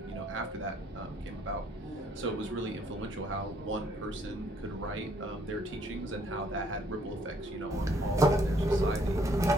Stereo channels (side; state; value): both; normal; correlation 0.65